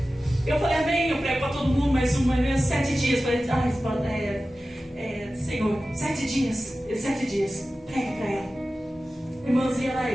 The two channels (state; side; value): normal; both; correlation 0.95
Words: Eu falei: amém, eu prego para todo mundo, mas 7 dias. Falei: Senhor, 7 dias. 7 dias, prega para ela. Irmãs, e era